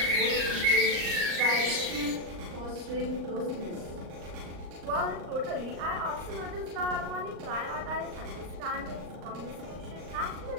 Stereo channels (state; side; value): late; left; 39 ms